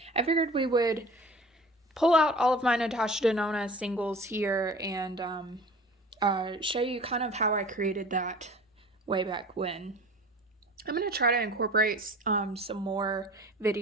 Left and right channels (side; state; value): both; normal; correlation 0.42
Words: I figured we would pull out all of my Natasha Denona singles here and show you kind of how I created that way back when. I'm going to try to incorporate some more